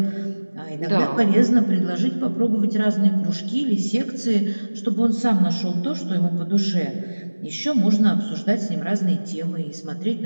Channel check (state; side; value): inverted; both; correlation -1.00